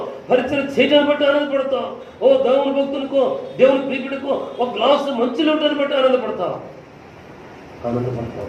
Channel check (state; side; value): identical; both; correlation 1.00